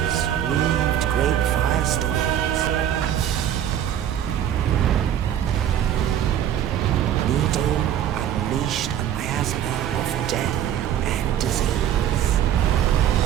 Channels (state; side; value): quieter; left; 10.4 dB